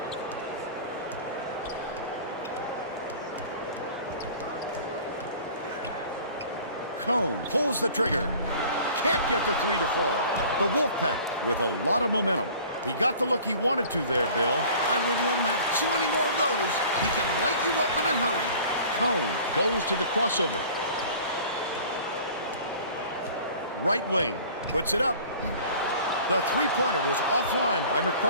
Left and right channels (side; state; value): both; inverted; correlation -0.46